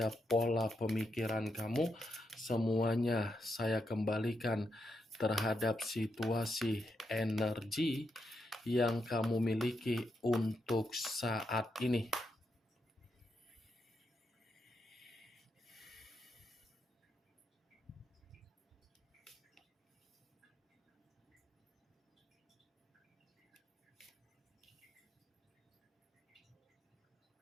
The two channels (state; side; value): normal; both; correlation 0.83